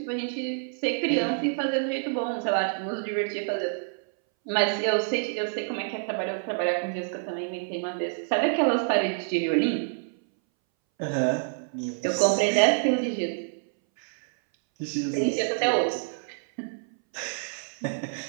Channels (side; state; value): left; silent; 60 dB below the other